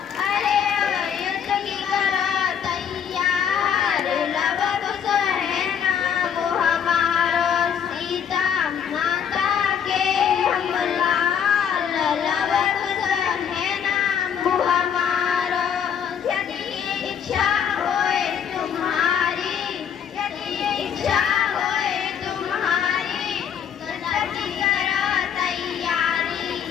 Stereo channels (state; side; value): quieter; right; 8.0 dB